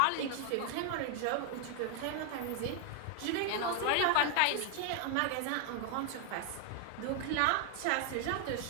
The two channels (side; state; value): both; different; correlation 0.00